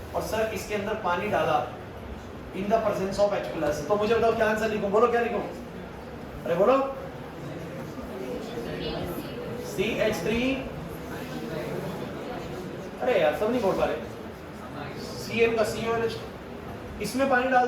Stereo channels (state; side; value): identical; both; correlation 1.00